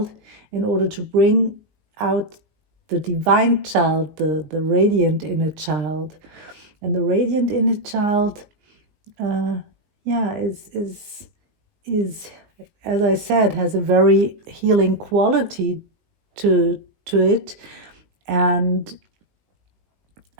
in order to bring out the divine child, the radiant inner child. And the radiant inner child, is, as I said, has a very healing quality to it. And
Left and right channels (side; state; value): left; late; 19 ms